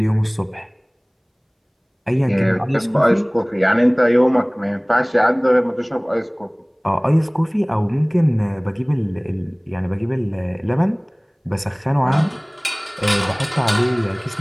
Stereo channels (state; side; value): identical; both; correlation 1.00